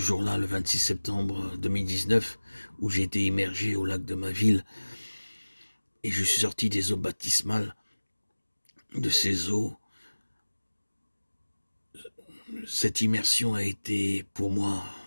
le 26 septembre 2019, où j'ai été immergé au lac de ma ville, et je suis sorti des eaux baptismales, de ces eaux, cette immersion a été pour moi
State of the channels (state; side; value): inverted; both; correlation -1.00